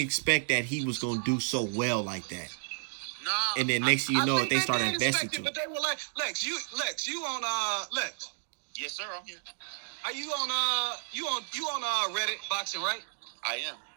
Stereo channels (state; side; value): silent; left; digital silence